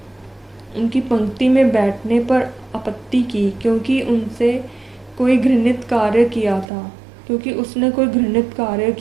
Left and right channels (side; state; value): left; drops out; at 6.7 s